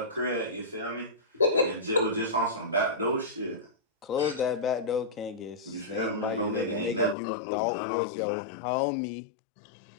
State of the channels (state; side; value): drops out; right; at 7.2 s